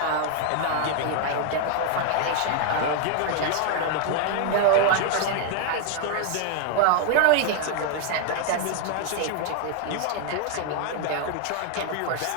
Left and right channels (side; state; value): both; different; correlation 0.00